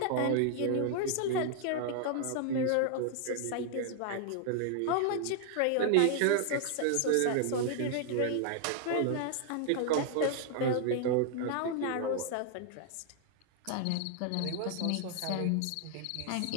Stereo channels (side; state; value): both; different; correlation 0.00